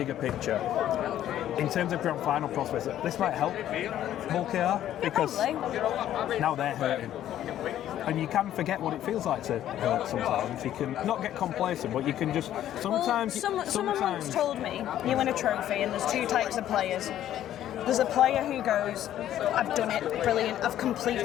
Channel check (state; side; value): quieter; right; 11.9 dB